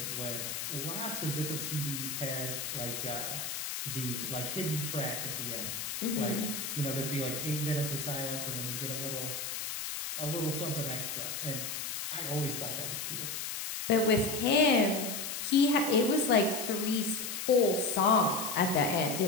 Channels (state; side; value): noise; left; hiss, 4 dB below the sound